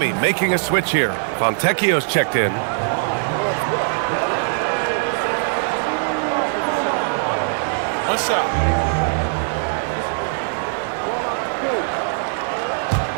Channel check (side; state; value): left; silent; 63 dB below the other